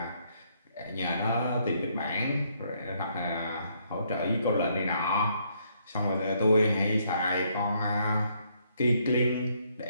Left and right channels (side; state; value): both; inverted; correlation -0.71